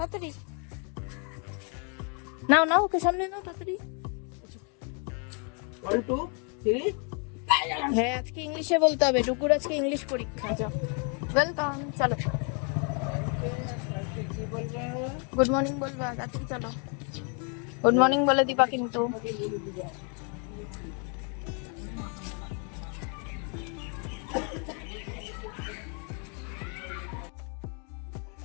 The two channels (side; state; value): right; quieter; 38.4 dB